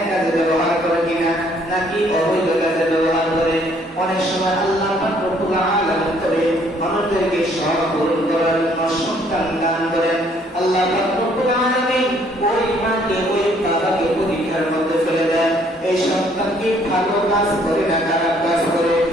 কাজে ব্যবহার করে কিনা, নাকি অবৈধ কাজে ব্যবহার করে। অনেক সময় আল্লাহ পাক রব্বুল আলামিন তবে মানুষদেরকে সব পূরণ করার জন্য সন্তান দান করেন। আল্লাহ পাক রব্বুল আলামিন ওই মাকে ওই বাবাকে পরীক্ষার মধ্যে ফেলে দেন। এই সন্তান কি ভালো কাজ করে না খারাপ কাজ করে,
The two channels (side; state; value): both; normal; correlation 0.64